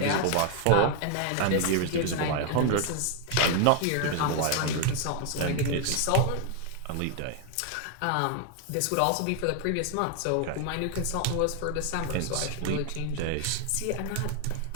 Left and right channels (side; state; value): both; different; correlation 0.00